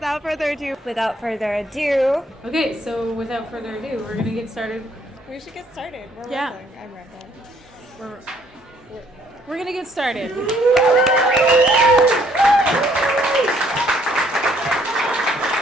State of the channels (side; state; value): both; normal; correlation 0.65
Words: further ado. Okay, so without further ado, we're going to get started. We should get started. We're Yeah. rambling. I'm rambling. We're going to get started.